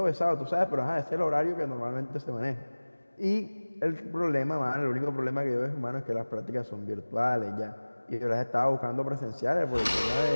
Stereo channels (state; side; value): inverted; both; correlation -1.00